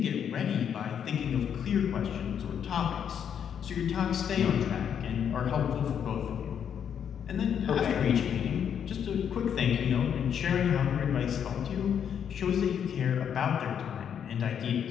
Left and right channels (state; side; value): quieter; right; 8.3 dB